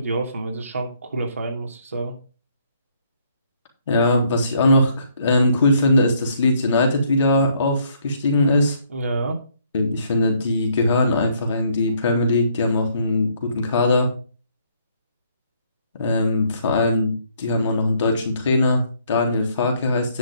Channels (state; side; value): inverted; both; correlation -0.68